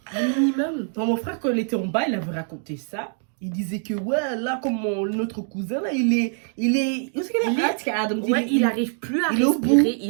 Un minimum. Non, mon frère, quand il était en bas, il avait raconté ça. Il disait que, ouais, là, comme notre cousin, là, il est... Où est-ce qu'il est Adam dit, Ouais, il n'arrive plus à il est au bout. respirer.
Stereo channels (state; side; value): silent; left; 56 dB below the other